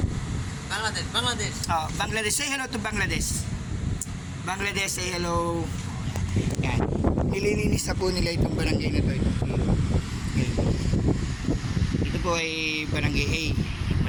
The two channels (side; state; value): both; identical; correlation 1.00